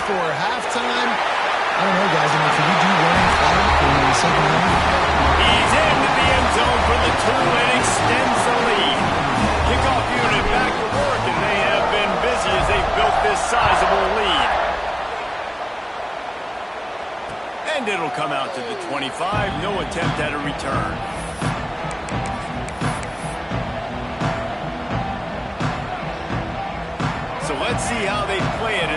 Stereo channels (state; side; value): identical; both; correlation 1.00